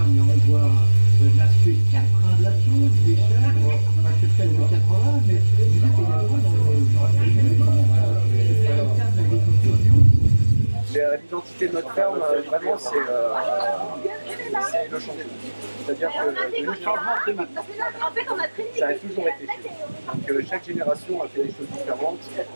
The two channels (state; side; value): inverted; both; correlation -1.00